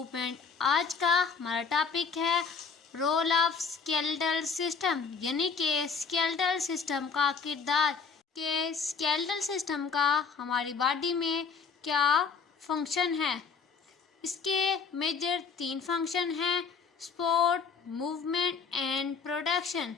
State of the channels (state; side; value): quieter; right; 5.5 dB